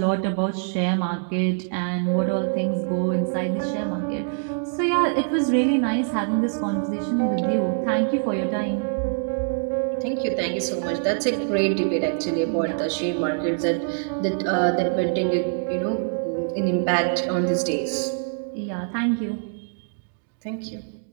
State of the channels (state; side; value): silent; left; digital silence